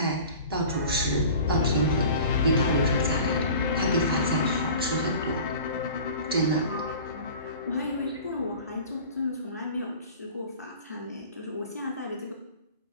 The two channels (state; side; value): inverted; both; correlation -0.41